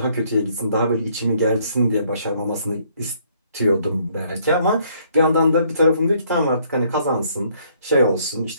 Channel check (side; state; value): both; inverted; correlation -0.66